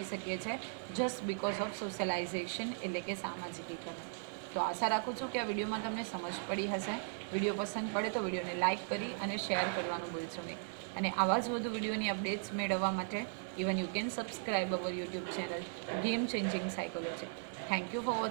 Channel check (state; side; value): silent; left; 53 dB below the other